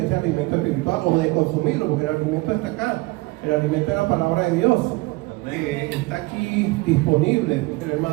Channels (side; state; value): left; quieter; 22.3 dB